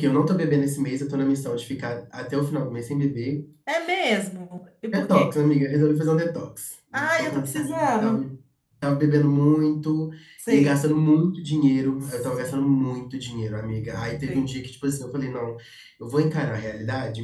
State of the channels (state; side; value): identical; both; correlation 1.00